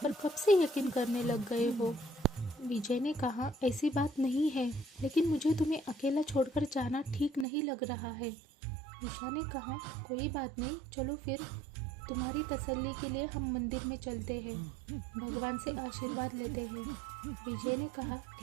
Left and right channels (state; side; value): drops out; left; at 7.5 s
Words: कब से यकीन करने लग गए हो? विजय ने कहा, ऐसी बात नहीं है, लेकिन मुझे तुम्हें अकेला छोड़कर जाना ठीक नहीं लग रहा है। ईशा ने कहा, कोई बात नहीं, चलो फिर तुम्हारी तसल्ली के लिए हम मंदिर में चलते हैं, भगवान से आशीर्वाद लेते हैं। विजय ने कहा,